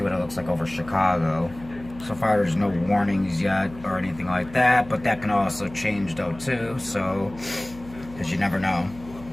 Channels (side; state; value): left; noise; hum, 18 dB below the sound